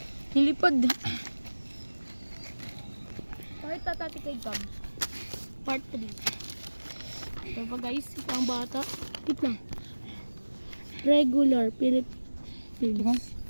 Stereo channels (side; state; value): both; inverted; correlation -1.00